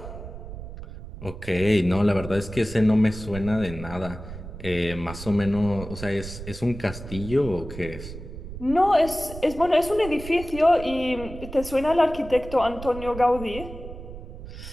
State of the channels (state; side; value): noise; right; rumble, 12 dB below the sound